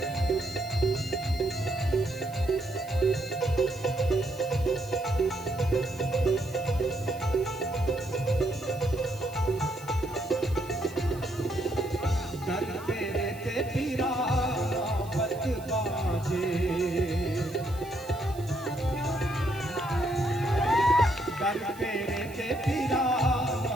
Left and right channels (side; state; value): right; noise; hiss, 21 dB below the sound